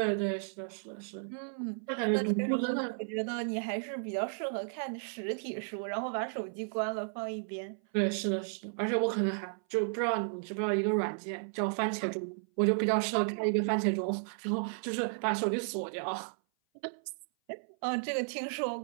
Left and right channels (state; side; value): silent; left; 55 dB below the other